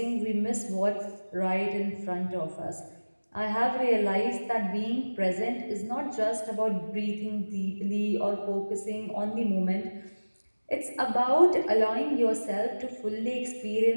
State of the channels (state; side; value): inverted; both; correlation -1.00